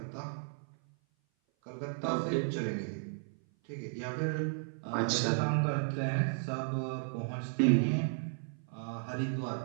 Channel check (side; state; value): left; silent; 55 dB below the other